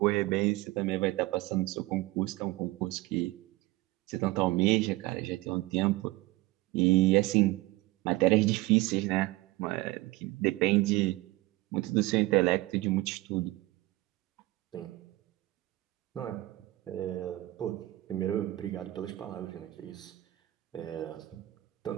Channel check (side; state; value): left; quieter; 19.1 dB